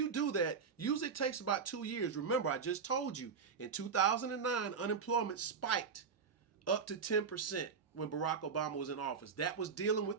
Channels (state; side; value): quieter; left; 5.9 dB